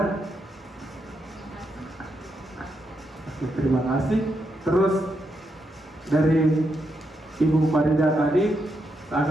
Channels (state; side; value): normal; both; correlation 0.82